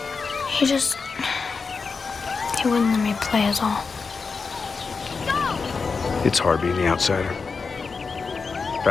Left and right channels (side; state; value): right; quieter; 4.8 dB